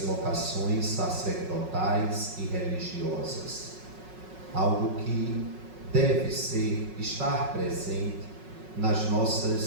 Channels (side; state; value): left; late; 5.4 ms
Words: sacerdotais e religiosas. Algo que deve estar presente nas